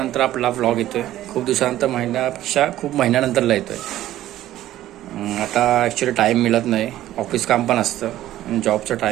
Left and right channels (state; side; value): quieter; left; 13.8 dB